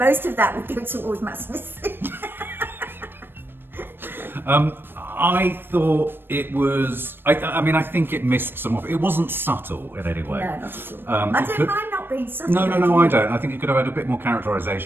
of that would go towards Matt Smith. I thought it was. I mean, I think it missed some of it. It wasn't subtle in any way. No, not at all. I don't mind not being subtle. No, I don't. I think it could have had a bit more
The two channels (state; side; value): late; left; 0.099 ms